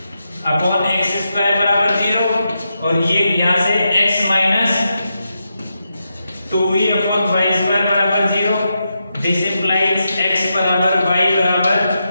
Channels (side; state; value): both; inverted; correlation -0.86